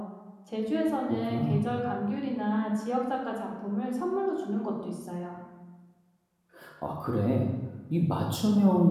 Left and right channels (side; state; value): both; identical; correlation 1.00